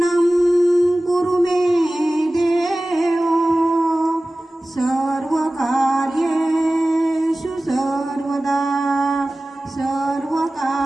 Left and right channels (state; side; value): normal; both; correlation 0.97